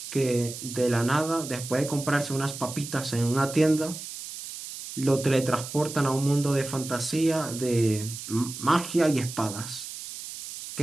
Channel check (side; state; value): right; noise; hiss, 10 dB below the sound